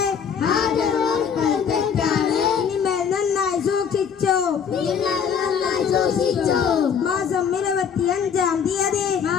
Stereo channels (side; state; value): right; quieter; 7.2 dB